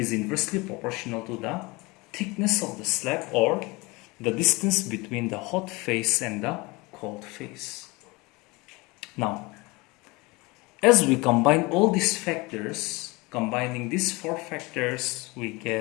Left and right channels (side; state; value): right; quieter; 24.4 dB